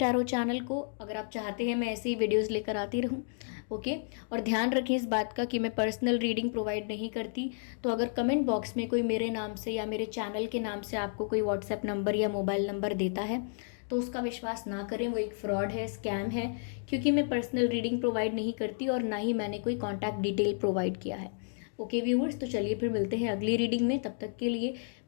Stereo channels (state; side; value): silent; right; digital silence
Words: चैनल को अगर आप चाहते हैं मैं ऐसे ही वीडियोस लेकर आती रहूं। ओके, और ध्यान रखें इस बात का कि मैं पर्सनल रीडिंग प्रोवाइड नहीं करती। तो अगर कमेंट बॉक्स में कोई मेरे नाम से या मेरे चैनल के नाम से आपको कोई व्हाट्सएप नंबर या मोबाइल नंबर देता है तो उसका विश्वास ना करें, वो एक फ्रॉड है, स्कैम है, क्योंकि मैं पर्सनल रीडिंग प्रोवाइड नहीं करती और ना ही मैंने कोई कॉन्टैक्ट डिटेल प्रोवाइड किया है। ओके व्यूअर्स, तो चलिए फिर मिलते हैं अगली रीडिंग में। तब तक के लिए